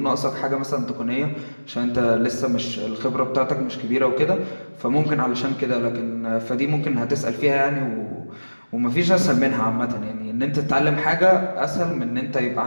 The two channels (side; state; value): both; inverted; correlation -1.00